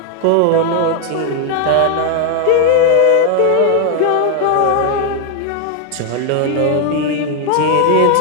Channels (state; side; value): different; both; correlation 0.00